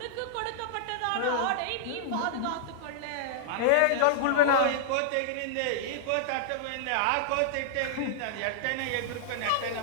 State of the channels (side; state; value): both; different; correlation -0.01